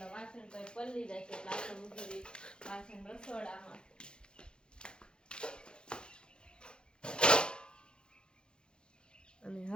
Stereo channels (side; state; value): right; late; 0.050 ms